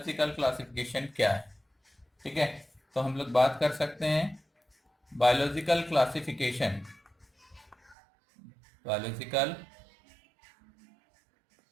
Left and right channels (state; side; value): drops out; left; at 8.0 s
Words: क्लासिफिकेशन क्या है। ठीक है, तो हम लोग बात कर सकते हैं बायोलॉजिकल क्लासिफिकेशन। बायोलॉजिकल